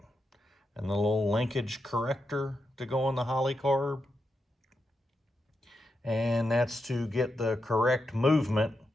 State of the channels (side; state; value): both; normal; correlation 0.86